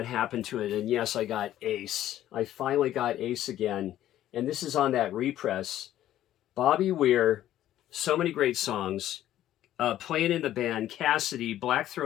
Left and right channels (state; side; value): quieter; right; 12.7 dB